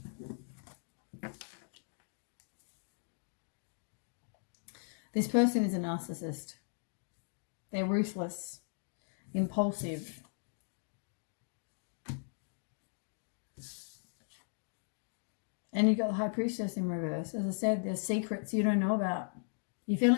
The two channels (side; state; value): right; silent; digital silence